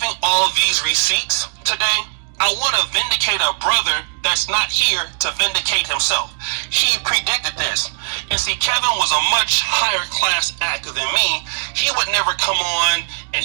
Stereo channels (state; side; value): silent; left; digital silence